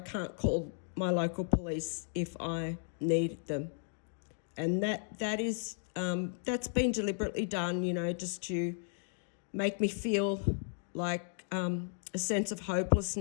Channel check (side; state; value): right; silent; digital silence